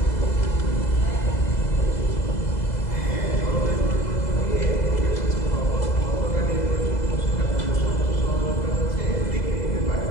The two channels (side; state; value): right; late; 2.0 ms